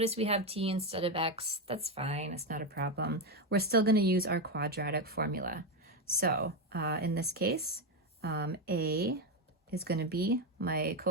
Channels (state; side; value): normal; both; correlation 0.09